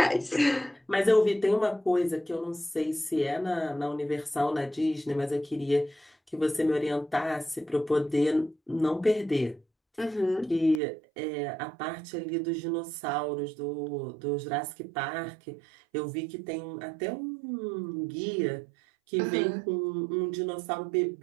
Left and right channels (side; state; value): left; drops out; at 10.8 s